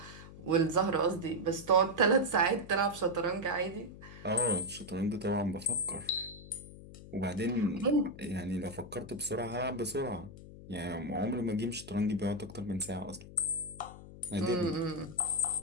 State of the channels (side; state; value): left; noise; hum, 16 dB below the sound